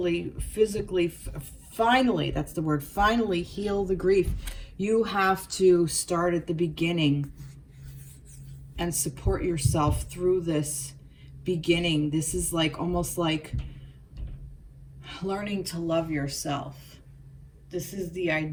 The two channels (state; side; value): identical; both; correlation 1.00